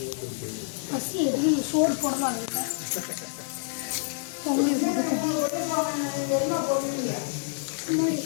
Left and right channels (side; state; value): right; silent; 60 dB below the other